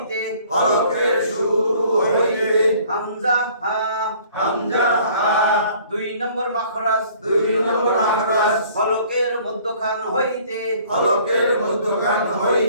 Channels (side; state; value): both; inverted; correlation -0.55